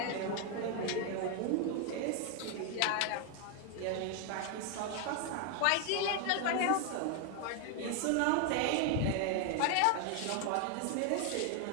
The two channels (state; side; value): different; both; correlation 0.01